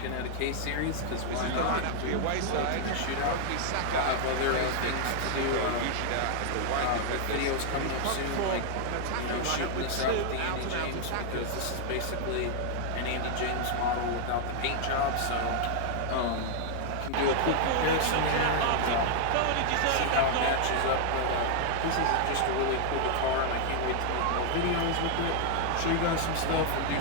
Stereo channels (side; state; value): both; different; correlation 0.00